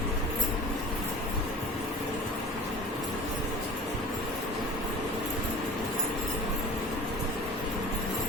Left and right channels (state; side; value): normal; both; correlation 0.39